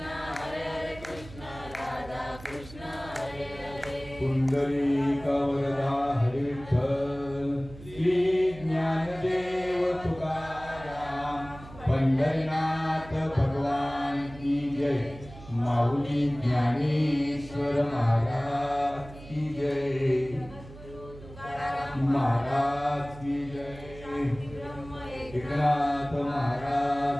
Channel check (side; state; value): right; noise; hum, 17 dB below the sound